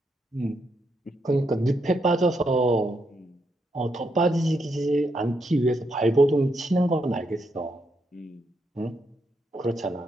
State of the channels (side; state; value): both; normal; correlation 0.80